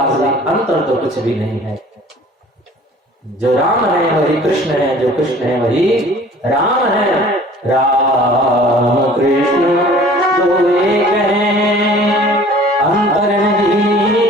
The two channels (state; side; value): normal; both; correlation 0.49